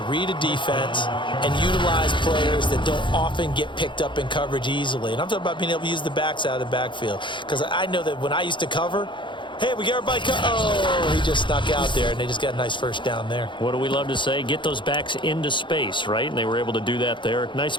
read a defense and utilize players that don't often get picked up in coverage easily. And I'm talking about being able to use the backs out of the backfield. Because I know that when I used to cover, hey, we got everybody oh, he just snuck out there, and they just got a nice first down there. What do we love to say? Get those backs into space, right? And they were able to do that there. Nice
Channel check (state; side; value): late; right; 0.23 ms